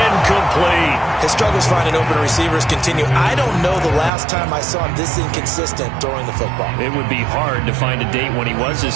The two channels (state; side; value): drops out; left; at 4.1 s